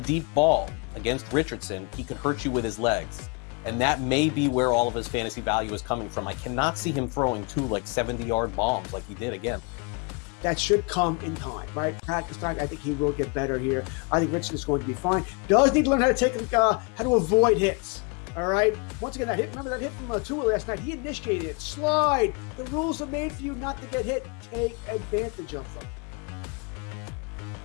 deep ball against Richardson, he can hurt you with his legs. And that may be where all of his fantasy value is coming from. I cannot see him throwing 2 70-yard bombs like he did again. That should come in time, right? Practice time. I think he will get better here. I think Richardson is going to be fine. Does need to learn how to avoid hits. All right. Once again, remember that hit from Tua last night? He initiated it. Slide. The rules are made for you not to get hit. Take advantage of them.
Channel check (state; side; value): quieter; right; 32.2 dB